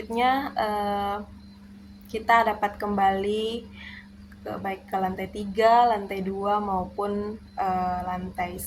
kita dapat kembali baik ke lantai 3, lantai 2 maupun lantai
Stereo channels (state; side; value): identical; both; correlation 1.00